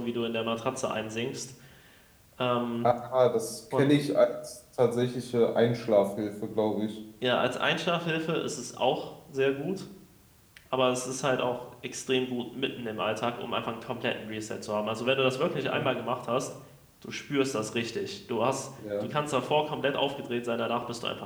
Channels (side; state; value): both; identical; correlation 1.00